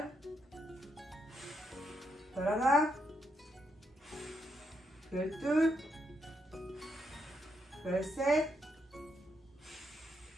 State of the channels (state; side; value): normal; both; correlation 0.79